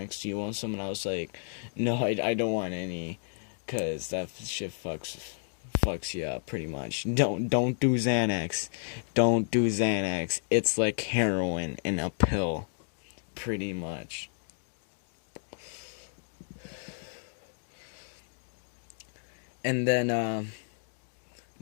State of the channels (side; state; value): right; silent; digital silence